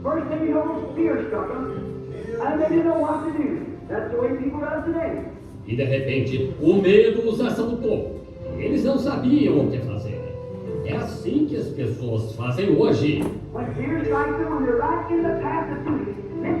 first thing you know, fear struck them, and they didn't know what to do. That's the way people are today. E de repente, o medo os assaltou. E eles não sabiam o que fazer. É assim que as pessoas fazem hoje. When fear strikes them, when they're right in the path of duty,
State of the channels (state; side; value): identical; both; correlation 1.00